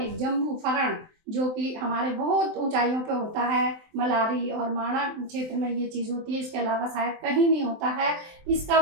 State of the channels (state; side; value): late; left; 23 ms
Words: जम्बू फरण, जो कि हमारे बहुत ऊंचाइयों पे होता है। मलारी और माणा क्षेत्र में ये चीज़ होती है, इसके अलावा शायद कहीं नहीं होता है। इसका